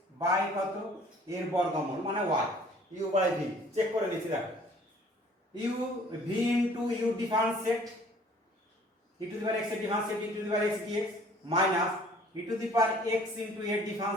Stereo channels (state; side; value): normal; both; correlation 0.54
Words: by কত এর বর্গমূল মানে y, u by v, check করে নিচ্ছি দেখো, u v into u differentiate e to the power x এর differentiate e to the power x dx minus e to the power x into এর